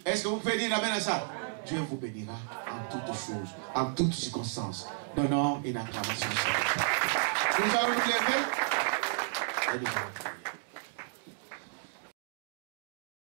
Est-ce que vous pouvez dire amen à ça? Dieu vous bénira en toutes choses, en toutes circonstances. Donnons une acclamation. Nous allons nous lever et nous allons prier.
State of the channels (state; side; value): silent; left; digital silence